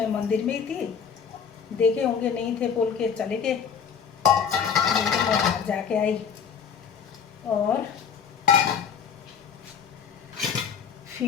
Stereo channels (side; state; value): right; quieter; 7.1 dB